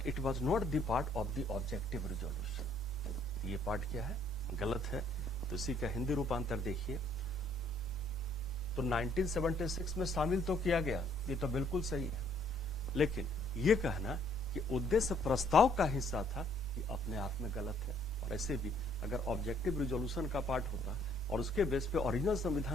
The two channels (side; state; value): both; normal; correlation 0.64